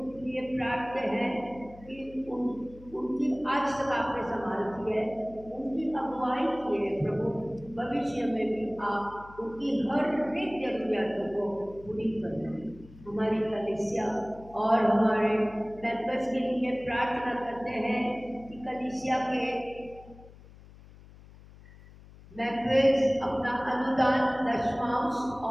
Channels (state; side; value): noise; left; hum, 21 dB below the sound